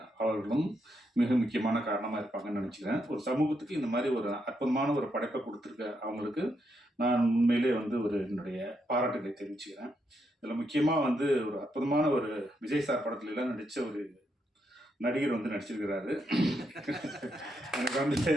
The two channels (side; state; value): both; normal; correlation 0.80